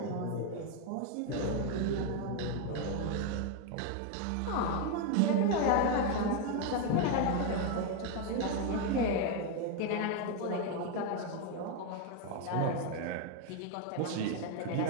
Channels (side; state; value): both; different; correlation 0.01